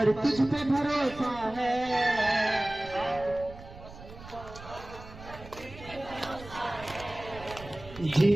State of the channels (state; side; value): noise; right; rumble, 16 dB below the sound